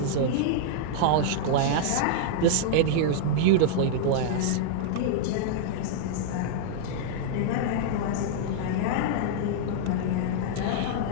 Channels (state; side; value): different; both; correlation -0.02